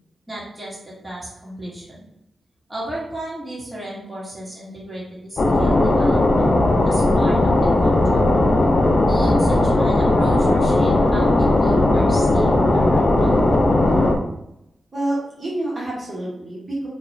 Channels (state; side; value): normal; both; correlation 0.91